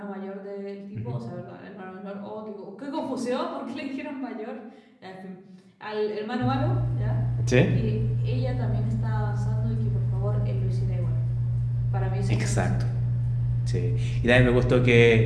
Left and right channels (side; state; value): both; identical; correlation 1.00